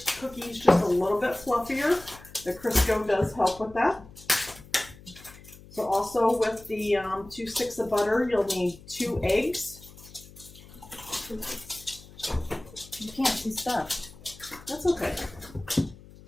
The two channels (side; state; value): left; noise; hum, 20 dB below the sound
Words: cookies just a little bit fluffier, the Crisco does help with that. So also with the 2 sticks of butter, you'll need 2 eggs. You can't see stuff. That's okay.